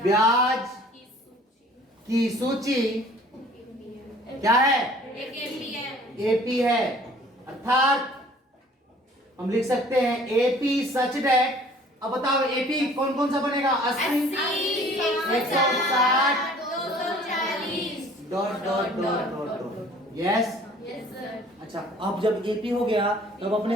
की सूची क्या है? एपी है। अर्थात हम लिख सकते हैं एपी सच डेट। अब बताओ एपी कौन कौन सा बनेगा? 80, 160 dot dot dot dot. Yes. अच्छा, अब जब एपी हो गया तब अपने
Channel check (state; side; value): normal; both; correlation 0.52